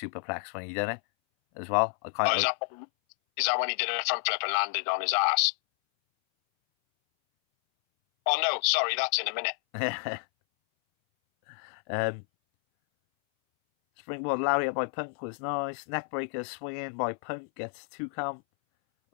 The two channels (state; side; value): silent; right; 58 dB below the other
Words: when he did it as well. Is that when he did a front flip and landed on his ass? Oh no, sorry, that's in a minute. Springboard lariat by Punk was nice. Neckbreaker swinging by Punk gets 2 count.